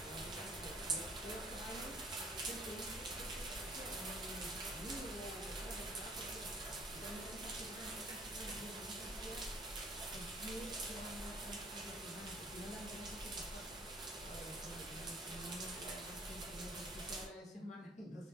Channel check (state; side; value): normal; both; correlation 0.56